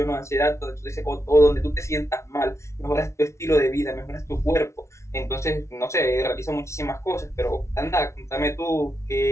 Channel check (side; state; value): right; late; 0.13 ms